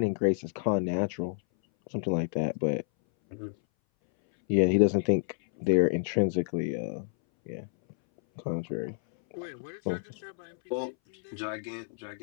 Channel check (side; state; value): right; silent; 58 dB below the other